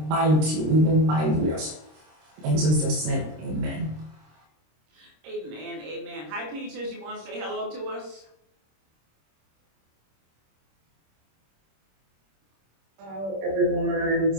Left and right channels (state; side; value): late; left; 26 ms